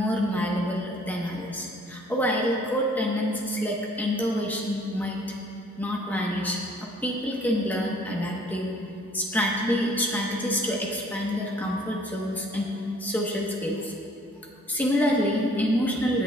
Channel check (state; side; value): normal; both; correlation 0.58